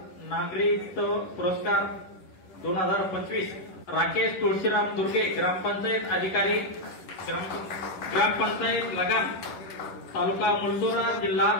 नागरिकत्व पुरस्कार 2025 राकेश तुळशीराम दुर्गे ग्रामपंचायत अधिकारी ग्रामपंचायत लगान तालुका मुलचोरा जिल्हा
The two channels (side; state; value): right; late; 10 ms